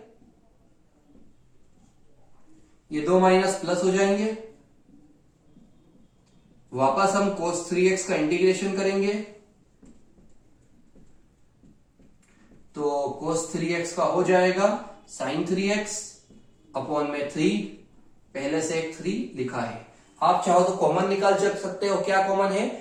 ये 2 माइनस प्लस हो जाएंगे, वापस हम cos 3x का इंटीग्रेशन करेंगे, तो cos 3x का हो जाएगा sin 3x अपॉन में 3, पहले से एक 3 लिखा है। आप चाहो तो कॉमन निकाल सकते हो। क्या कॉमन है?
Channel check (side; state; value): both; identical; correlation 1.00